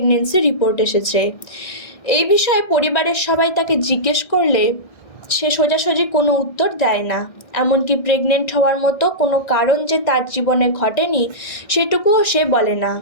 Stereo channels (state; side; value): late; right; 1.6 ms